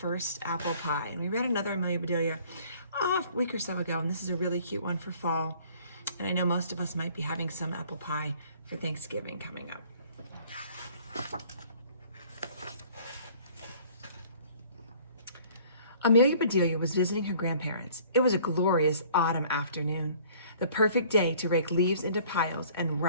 Apple Pie. And we read another Amelia Bedelia a week or so ago, and this is a really cute one for fall. And I know most of us might be having some apple pie for Thanksgiving coming up. Amelia Bedelia was visiting her grandparents. It was a glorious autumn afternoon, the perfect day to rake leaves into piles and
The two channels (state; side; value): inverted; both; correlation -0.54